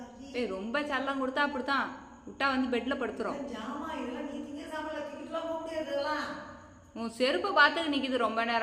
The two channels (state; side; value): identical; both; correlation 1.00